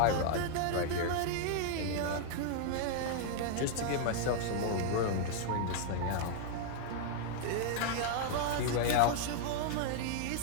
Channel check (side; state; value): both; different; correlation 0.00